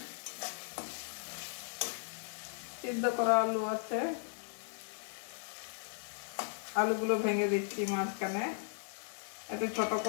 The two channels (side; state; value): right; silent; 53 dB below the other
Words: সিদ্ধ করা আলু আছে। আলুগুলো ভেঙে দিচ্ছি মাঝখানে, একটু ছোট